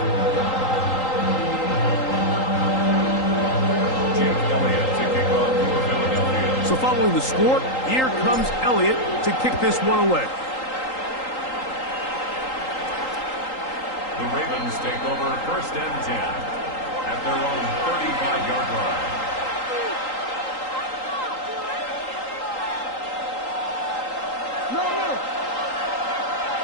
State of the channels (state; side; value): late; right; 3.8 ms